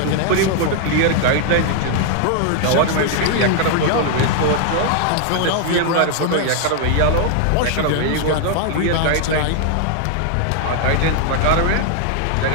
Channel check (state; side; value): different; both; correlation 0.00